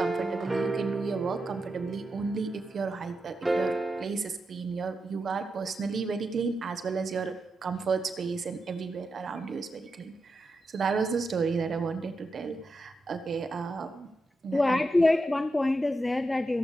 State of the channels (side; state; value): both; normal; correlation 0.87